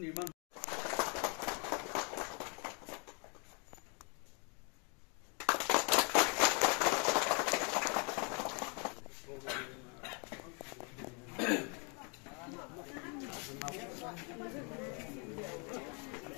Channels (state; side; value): quieter; right; 35.6 dB